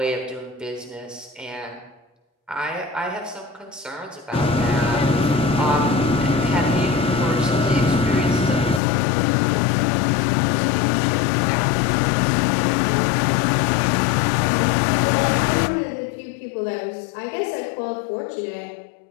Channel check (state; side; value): drops out; right; at 8.8 s